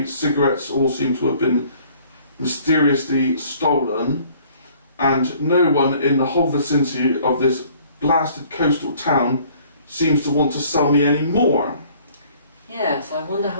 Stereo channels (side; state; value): both; inverted; correlation -0.56